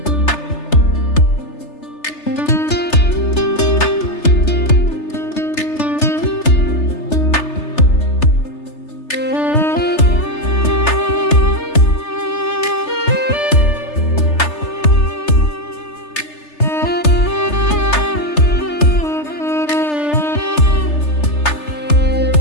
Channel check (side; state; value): right; late; 3.3 ms